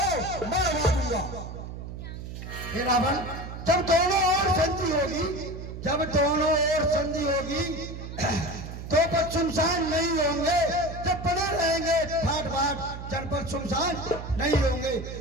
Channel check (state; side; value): noise; right; hum, 9 dB below the sound